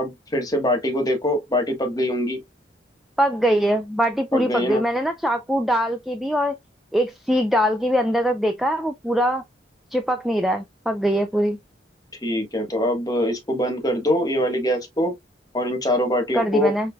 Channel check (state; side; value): normal; both; correlation 0.70